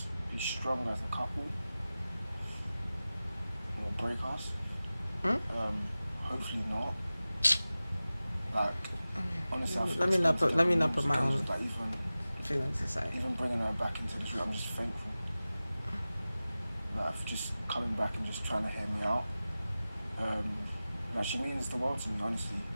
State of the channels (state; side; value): inverted; both; correlation -0.96